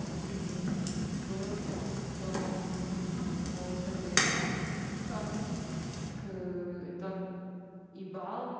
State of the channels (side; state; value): both; identical; correlation 1.00